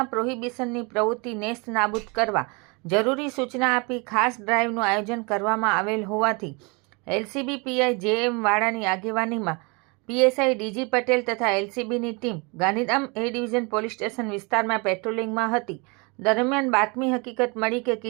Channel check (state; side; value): quieter; left; 29.9 dB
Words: પ્રોહિબિશનની પ્રવૃત્તિ નેસ્ત નાબૂદ કરવા જરૂરી સૂચના આપી ખાસ ડ્રાઇવનું આયોજન કરવામાં આવેલ હોવાથી એલસીબી પીઆઈ જેએમ વાડાની આગેવાનીમાં પીએસઆઈ ડીજી પટેલ તથા એલસીબીની team Gandhidham A division police station વિસ્તારમાં પેટ્રોલિંગમાં હતી. દરમિયાન બાતમી હકીકત મળી કે